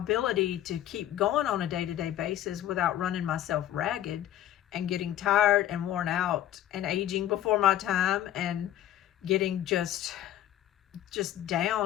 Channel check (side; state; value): right; quieter; 12.3 dB